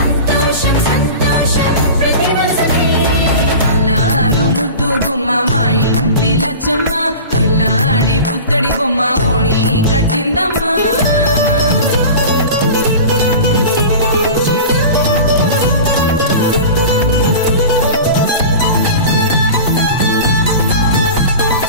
సంతోషం ప్రతి మనసుకి అల్లారు ముద్దు గుమ్మ మా ఇంటి లచ్చమ్మ పిల్లాడి పుత్తడి బొమ్మ ఓణి కట్టిందమ్మా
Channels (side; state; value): both; inverted; correlation -0.34